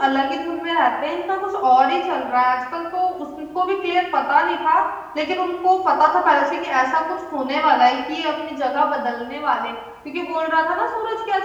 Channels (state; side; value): identical; both; correlation 1.00